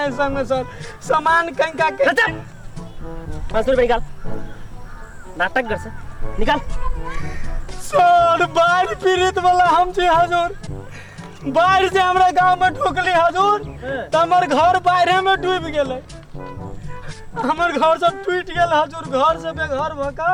संग सर, सामान कहीं का के 500 रुपया निकाल। नाटक गर्छ, निकाल। सर बाढ़ पीड़ित वाला हम छी हजुर, बाढ़ से हमरा गांव में ठोकली हजूर तो हमर घर बाढ़े में डूब गेले। हमर घर सब टूट गेल हजूर, घर से बेघर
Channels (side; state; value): both; identical; correlation 1.00